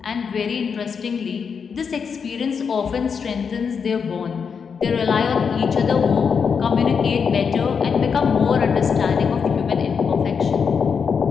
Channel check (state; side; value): quieter; right; 6.2 dB